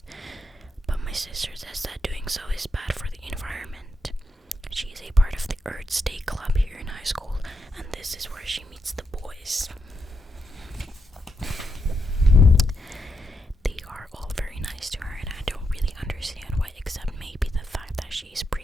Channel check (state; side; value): normal; both; correlation 0.83